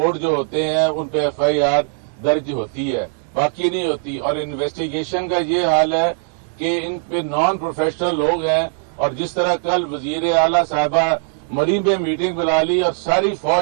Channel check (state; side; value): silent; left; digital silence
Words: جو ہوتے ہیں ان پہ ایف آئی آر درج ہوتی ہے، باقی نہیں ہوتی۔ اور انویسٹیگیشن کا یہ حال ہے کہ ان پہ نان پروفیشنل لوگ ہیں، اور جس طرح کل وزیر اعلیٰ صاحبہ مریم میں میٹنگ بلا لی اور ساری